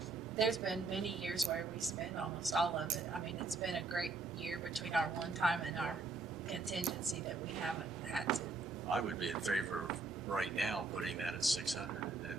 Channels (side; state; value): left; quieter; 3.8 dB